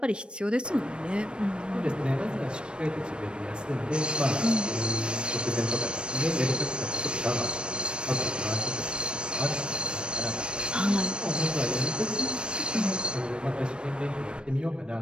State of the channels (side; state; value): left; late; 0.056 ms